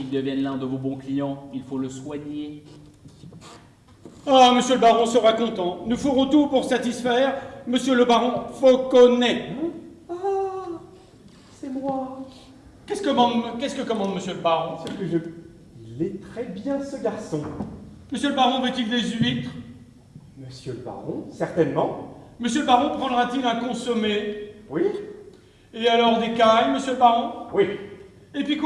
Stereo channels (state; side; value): identical; both; correlation 1.00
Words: devienne l'un de vos bons clients, il faut le soigner. Ah, monsieur le baron sera content. Nous ferons tout pour satisfaire monsieur le baron Fauconnet. Ah, c'est moi. Qu'est-ce que commande monsieur le baron? C'est que il est très bien, ce garçon. Monsieur le baron veut-il des huîtres? Monsieur le baron, certainement. Monsieur le baron prendra-t-il un consommé? Oui, Et alors des cailles, monsieur le baron? oui, Et puis